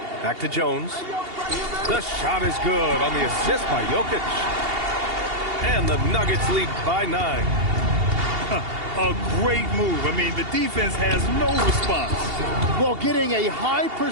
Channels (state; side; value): late; left; 2.8 ms